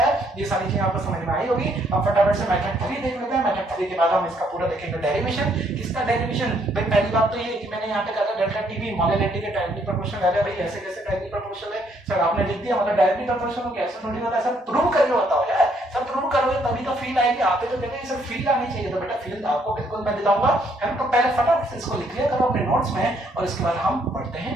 ये सारी चीजें आपको समझ में आई होगी। अब फटाफट से मेथड 3 देख लेते हैं, मेथड 3 के बाद हम इसका पूरा देखेंगे डेरिवेशन। किसका डेरिवेशन, भाई पहली बात तो ये कि मैंने यहाँ पे कहा था डेल्टा टीवी मोलैलिटी के डायरेक्टली प्रोपोर्शनल है, भाई ऐसे कैसे डायरेक्टली प्रोपोर्शनल है सर, आपने लिख दिया मतलब डायरेक्टली प्रोपोर्शनल हो, कैसे थोड़ी होता है सर, प्रूव करके बताओ यार, सब प्रूव करोगे तभी तो फील आएगी, आते तो कहते हैं सर फील आनी चाहिए, तो बेटा फील आपको बिल्कुल मैं दिलाऊंगा, है ना। तो पहले फटाफट से इसको लिख लिया करो अपने नोट्स में, और इसके बाद हम पढ़ते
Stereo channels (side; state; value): both; normal; correlation 0.69